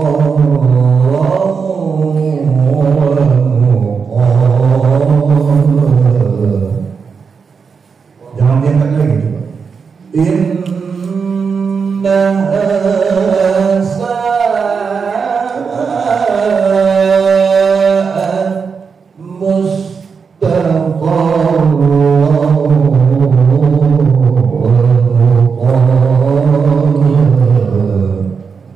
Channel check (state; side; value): quieter; left; 5.7 dB